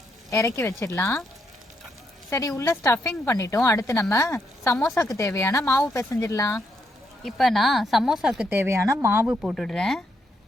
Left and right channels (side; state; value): both; normal; correlation 0.77